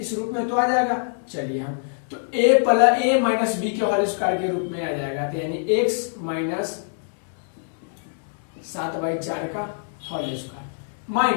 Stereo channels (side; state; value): right; silent; digital silence